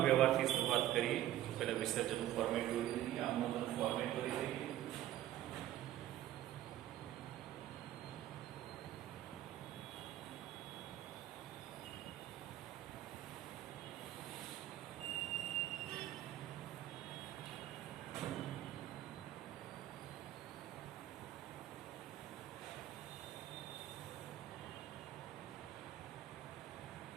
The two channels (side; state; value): left; quieter; 13.4 dB